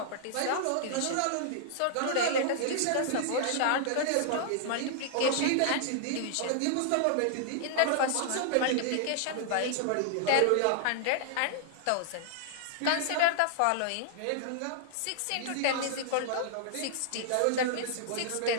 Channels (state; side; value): different; both; correlation -0.01